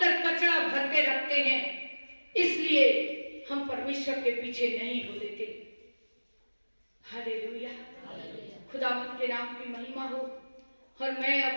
कचरा भर के रखते हैं, इसलिए हम परमेश्वर के पीछे नहीं हो लेते। हालेलुया, खुदावंद के नाम की महिमा हो। और मैं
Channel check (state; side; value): inverted; both; correlation -1.00